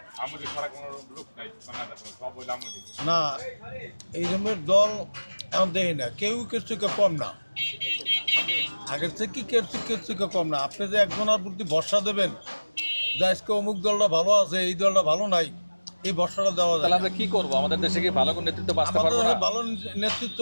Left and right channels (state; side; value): inverted; both; correlation -1.00